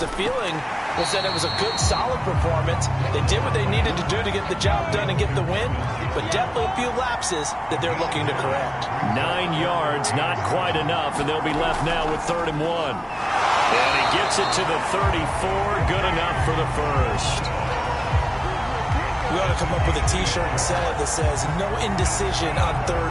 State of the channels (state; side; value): identical; both; correlation 1.00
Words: the feeling was that it was a good, solid performance. They did what they needed to do to get the job done and get the win, but definitely a few lapses that they're looking to correct. 9 yards, not quite enough, and they'll be left now with 3rd and 1. And he gets it to the 34, good enough for the first. We ought to come up with a T-shirt and sell it that says, no indecision on